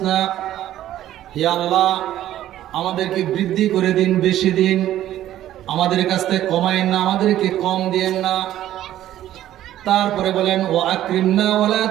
হে আল্লাহ, আমাদেরকে বৃদ্ধি করে দিন, বেশি দিন, আমাদের কাছ থেকে কমায়েন না, আমাদেরকে কম দিয়েন না। তারপরে বলেন, ওয়া আকরিমনা ওয়ালা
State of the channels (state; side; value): quieter; left; 12.9 dB